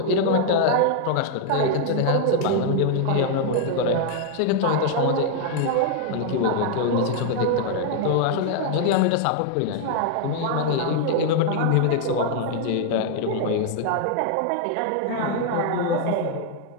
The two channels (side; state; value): both; different; correlation 0.00